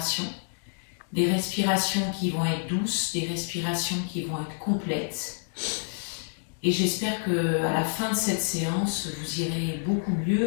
des respirations qui vont être douces, des respirations qui vont être complètes. Et j'espère qu'à la fin de cette séance, vous irez beaucoup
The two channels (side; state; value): right; silent; digital silence